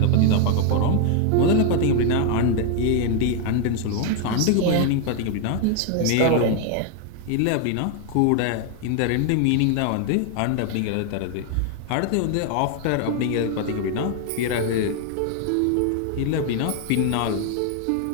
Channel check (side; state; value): both; different; correlation 0.00